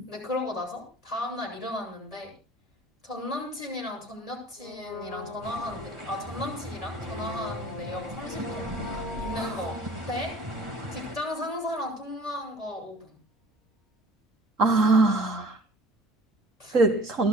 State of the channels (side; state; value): both; normal; correlation 0.48